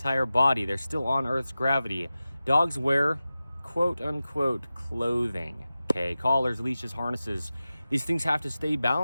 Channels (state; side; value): inverted; both; correlation -0.95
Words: body. They're still on Earth's gravity. Dogs wear quote-unquote clothing, okay? Collars, leashes, harnesses. These things have to stay